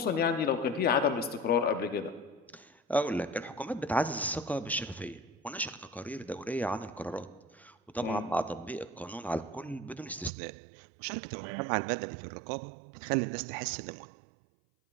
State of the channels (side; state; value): left; drops out; at 10.3 s